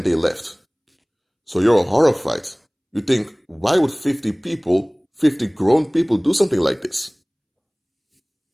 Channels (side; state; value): both; identical; correlation 1.00